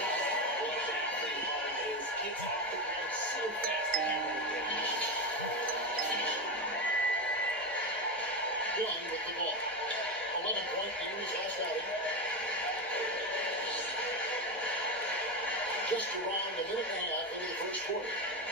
What exactly hard is gets off the ground so fast that you won't get it. Young with the ball. 11-point in his last outing. Just around a minute and a half into the first quarter.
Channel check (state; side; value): normal; both; correlation 0.16